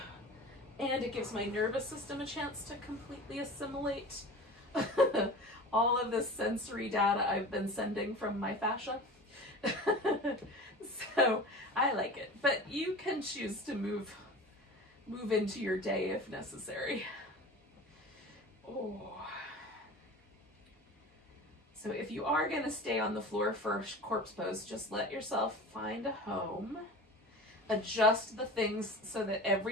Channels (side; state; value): both; normal; correlation 0.35